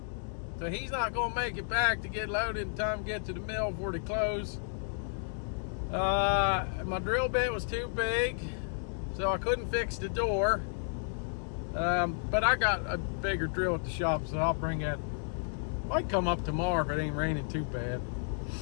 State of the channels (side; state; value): right; silent; digital silence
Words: so he's not going to make it back to get loaded in time to get to the mill before they close. My drill bit was too big, so I couldn't fix the door. But I got a bigger drill at the shop, so I'll bring that. Might come up tomorrow if it ain't raining too bad.